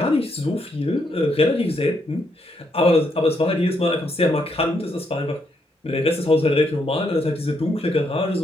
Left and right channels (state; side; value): normal; both; correlation 0.76